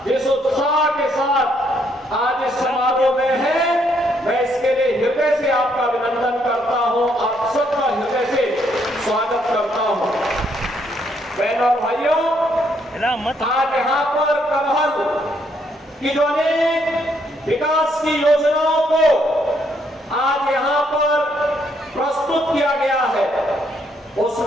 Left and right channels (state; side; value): normal; both; correlation 0.72